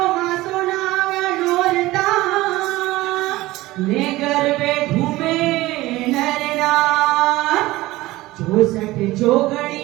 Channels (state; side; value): quieter; left; 18.4 dB